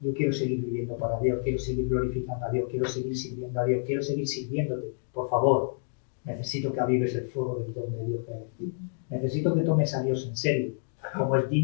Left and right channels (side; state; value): right; silent; digital silence